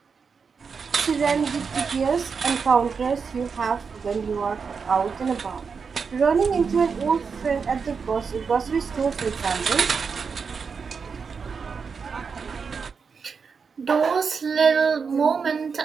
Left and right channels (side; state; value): left; quieter; 5.6 dB